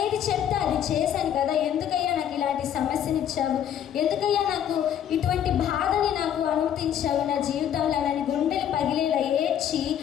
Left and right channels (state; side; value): quieter; right; 9.8 dB